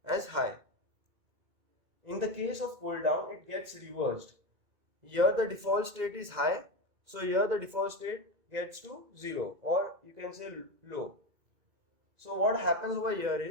as high. In the case of pull-down, it gets reversed. Here the default state is high, so here the default state gets to 0, or you can say low. So what happens over here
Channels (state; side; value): late; left; 2.1 ms